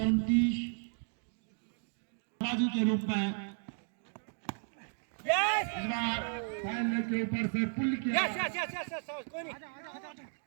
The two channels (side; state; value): left; silent; 55 dB below the other